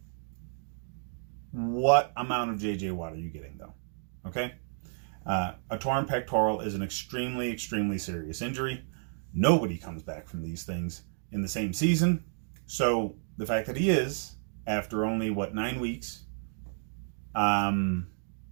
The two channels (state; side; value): silent; left; digital silence